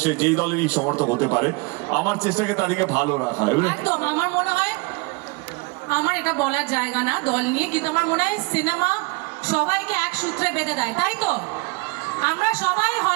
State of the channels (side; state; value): left; quieter; 27.6 dB